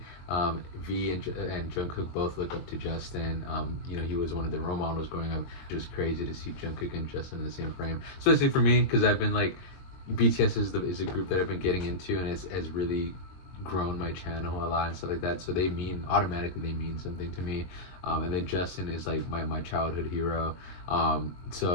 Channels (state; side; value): late; right; 22 ms